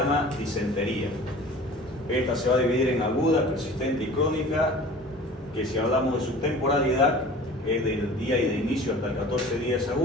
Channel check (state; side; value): normal; both; correlation 0.42